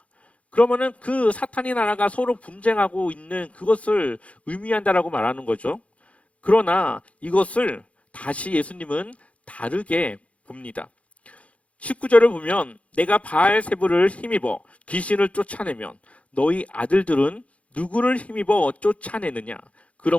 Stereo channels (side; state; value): right; late; 0.064 ms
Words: 그러면은 그 사탄의 나라가 서로 분쟁하고 있는 그것을 의미한다라고 말하는 거죠. 그러나 이것을 다시 예수님은 다르게 봅니다. 19절을 보면 내가 바알세불을 힘입어 귀신을 쫓아내면 너희 아들들은 누구를 힘입어 쫓아내느냐?